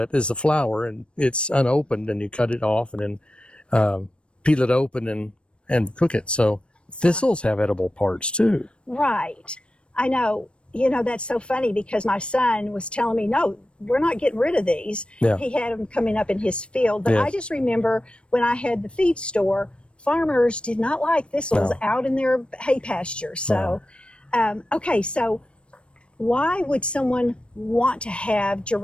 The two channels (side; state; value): right; late; 0.058 ms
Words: is a flower, and it's unopened, and you cut it off and then peel it open and cook it. So thistles have edible parts too. Right. I know. You know, that's so funny because my son was telling me, no, we're not getting rid of these. Yeah. He had them coming up in his field. But Yes. I just remember when I had the feed store, farmers did not like thistles out in their hay pastures. So, okay, so why would someone want to have